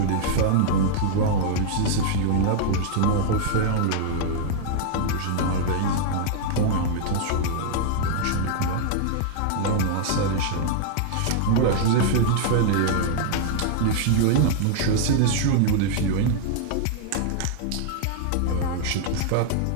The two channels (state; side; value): different; both; correlation -0.01